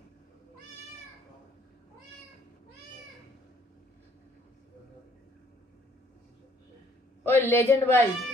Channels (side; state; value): both; normal; correlation 0.63